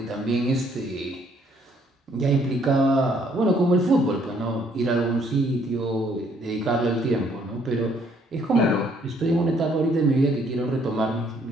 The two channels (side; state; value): both; normal; correlation 0.66